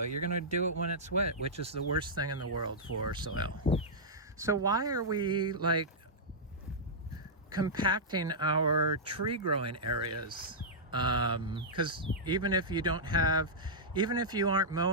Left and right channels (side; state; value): both; normal; correlation -0.11